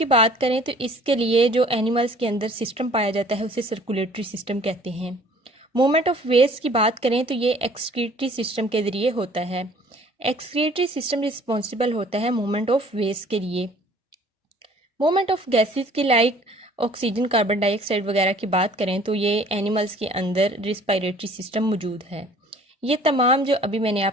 बात करें तो इसके लिए जो एनिमल्स के अंदर सिस्टम पाया जाता है उसे सर्कुलेटरी सिस्टम कहते हैं। मूवमेंट ऑफ वेस्ट की बात करें तो ये एक्सक्रीटरी सिस्टम के जरिए होता है। एक्सक्रीटरी सिस्टम रिस्पॉन्सिबल होता है मूवमेंट ऑफ वेस्ट के लिए। मूवमेंट ऑफ गैसेस की लाइक ऑक्सीजन, कार्बन डाइऑक्साइड वगैरह की बात करें तो ये एनिमल्स के अंदर रिस्पायरेटरी सिस्टम मौजूद है। ये तमाम जो अभी मैंने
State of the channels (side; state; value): both; normal; correlation 0.53